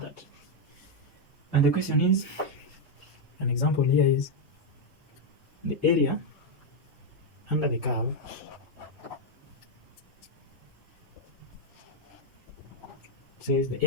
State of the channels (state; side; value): normal; both; correlation 0.02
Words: that. And the question is, an example here is the area under the curve says the